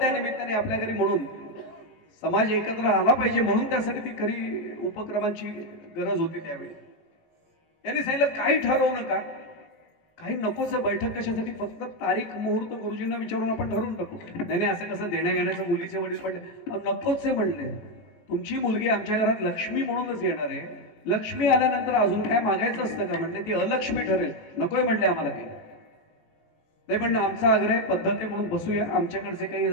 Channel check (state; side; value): late; right; 19 ms